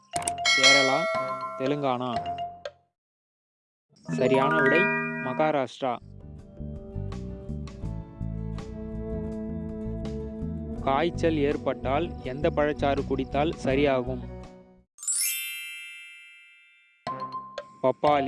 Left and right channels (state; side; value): identical; both; correlation 1.00